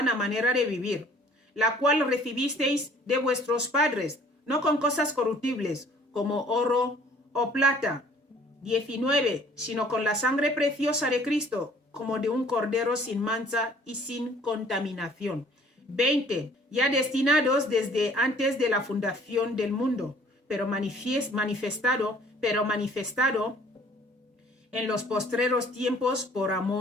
manera de vivir, la cual recibisteis de vuestros padres, no con cosas corruptibles, como oro o plata. 19. Sino con la sangre preciosa de Cristo, como de un cordero sin mancha y sin contaminación. 20. Ya destinados desde antes de la fundación del mundo, pero manifestado en los postreros tiempos por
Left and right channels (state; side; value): normal; both; correlation 0.55